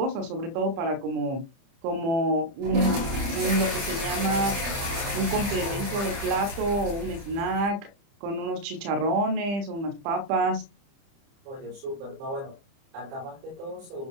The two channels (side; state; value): left; late; 30 ms